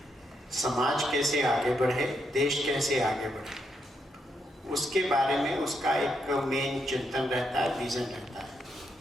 समाज कैसे आगे बढ़े, देश कैसे आगे बढ़े, उसके बारे में उसका एक मेन चिंतन रहता है, विजन रहता है।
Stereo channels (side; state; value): both; normal; correlation 0.79